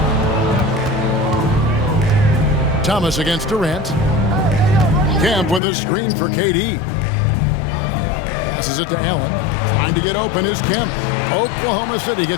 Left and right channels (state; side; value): drops out; right; at 5.6 s